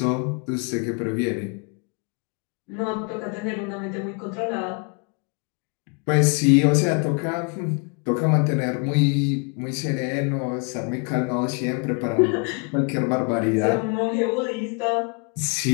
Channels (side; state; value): right; quieter; 35.2 dB